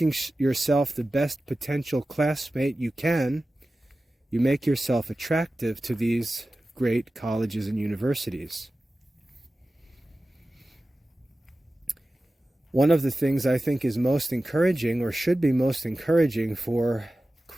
yourself the best potential classmate you can, you make yourself attractive to these great colleges and universities. One of the things I think is most encouraging, or should be most encouraging for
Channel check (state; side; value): normal; both; correlation 0.95